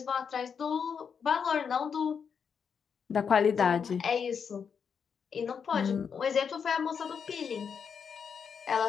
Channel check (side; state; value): right; quieter; 6.7 dB